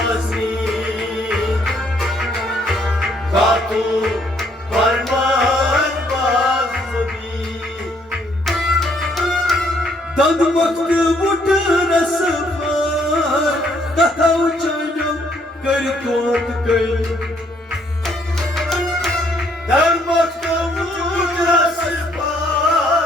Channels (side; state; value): both; normal; correlation 0.68